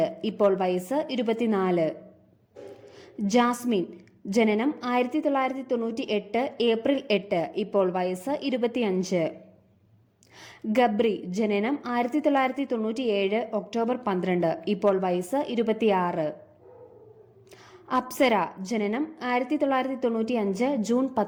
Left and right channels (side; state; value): both; identical; correlation 1.00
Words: ഇപ്പോൾ വയസ്സ് 24. ജാസ്മിൻ ജനനം 1998 ഏപ്രിൽ 8, ഇപ്പോൾ വയസ്സ് 25. ഗബ്രി ജനനം 1997 ഒക്ടോബർ 12, ഇപ്പോൾ വയസ്സ് 26. അപ്സര ജനനം 1995 ജൂൺ